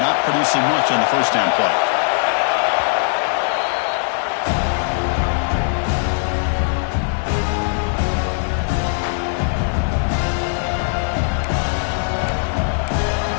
producing much on the first down play.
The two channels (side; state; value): right; silent; digital silence